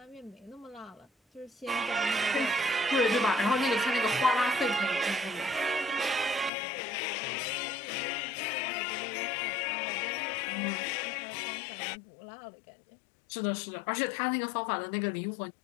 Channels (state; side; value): drops out; right; at 6.5 s